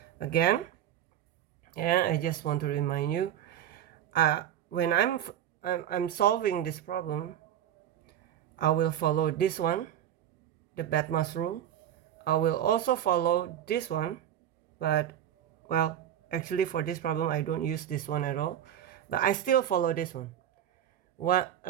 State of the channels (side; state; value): left; quieter; 10.8 dB